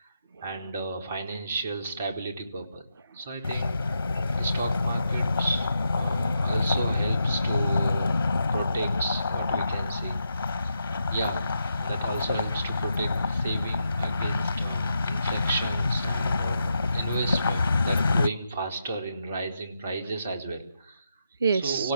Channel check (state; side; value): inverted; both; correlation -0.84